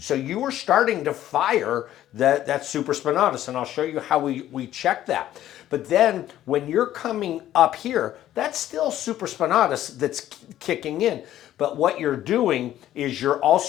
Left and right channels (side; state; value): right; quieter; 12.7 dB